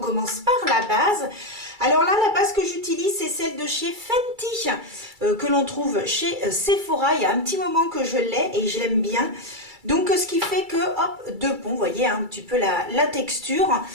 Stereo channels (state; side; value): late; left; 2.3 ms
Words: par la base. Alors là, la base que j'utilise, c'est celle de chez Fenty, que l'on trouve chez Sephora. Il y a un petit moment que je l'ai et je l'aime bien. Donc ce qui fait que, hop, deux ponts, vous voyez un petit peu la texture.